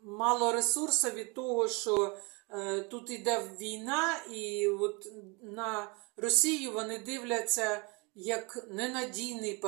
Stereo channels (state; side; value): quieter; left; 29.3 dB